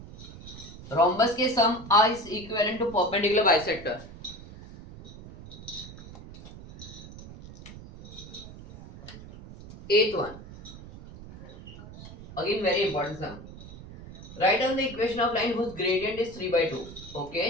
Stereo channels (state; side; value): noise; right; rumble, 15 dB below the sound